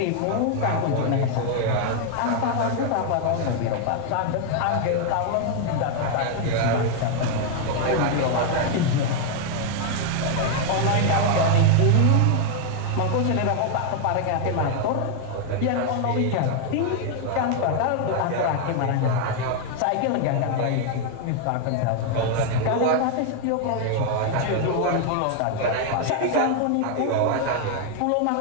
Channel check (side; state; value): both; different; correlation 0.00